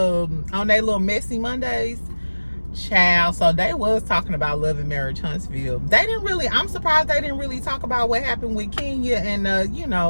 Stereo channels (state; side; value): inverted; both; correlation -1.00